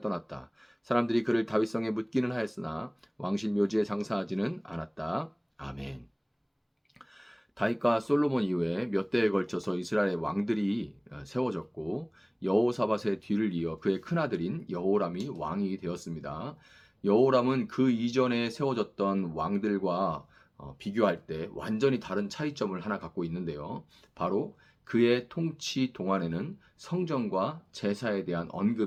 떠났다. 사람들이 그를 다윗성에 묻기는 하였으나 왕실 묘지에 장사하지는 않았다. 아멘. 다윗과 솔로몬 이후에 몇 대에 걸쳐서 이스라엘의 왕들이 세워졌고 여호사밧의 뒤를 이어 그의 큰아들인 여호람이 왕이 되었습니다. 여호람은 그 이전에 세워졌던 왕들과 비교할 때 완전히 다른 차이점을 하나 갖고 있는데요. 바로 그의 통치 동안에는 성전과 제사에 대한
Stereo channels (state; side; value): identical; both; correlation 1.00